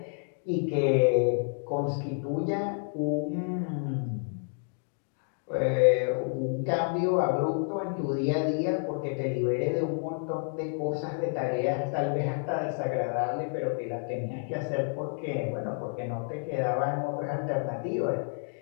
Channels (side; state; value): right; silent; 58 dB below the other